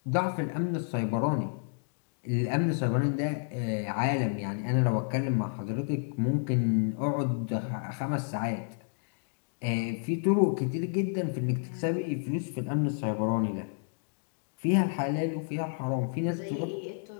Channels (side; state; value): right; silent; digital silence